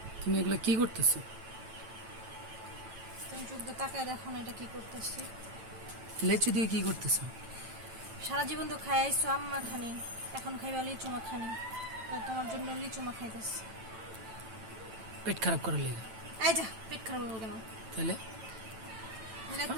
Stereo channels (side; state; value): left; late; 9.0 ms